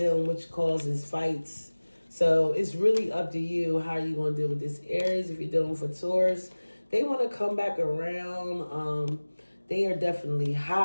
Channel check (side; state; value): both; inverted; correlation -1.00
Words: which causes fights. So it's really up to you how you're going to deal with this Aries. If you're dealing with a Taurus, they want to come back around. They are definitely